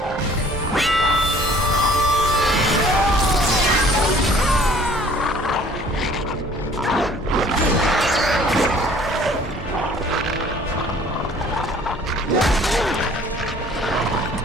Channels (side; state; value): both; normal; correlation 0.53